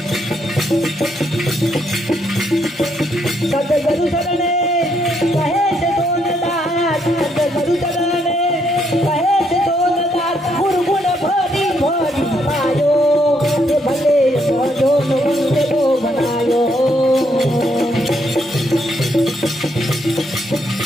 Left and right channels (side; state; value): both; normal; correlation 0.74